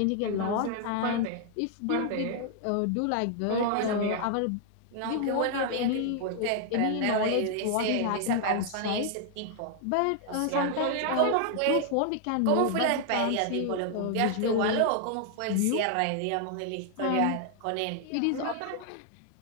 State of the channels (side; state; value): both; different; correlation 0.00